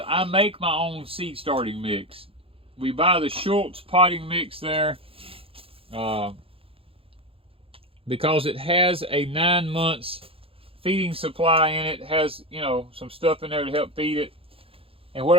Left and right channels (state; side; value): late; left; 0.27 ms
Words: I make my own seed starting mix. We buy the Schultz potting mix there because it has a 9 months feeding supply in it. It has, you know, some stuff in there to help feed it. And what